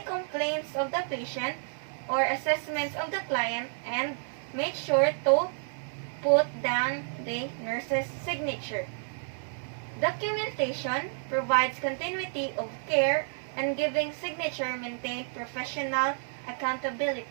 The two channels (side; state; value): left; silent; 58 dB below the other